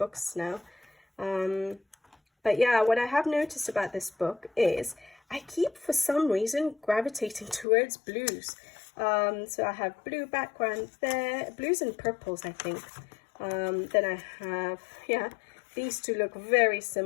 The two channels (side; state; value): right; drops out; at 7.7 s